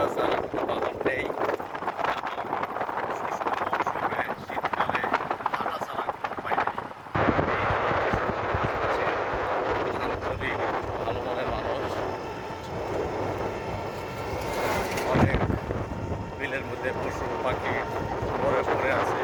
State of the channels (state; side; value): identical; both; correlation 1.00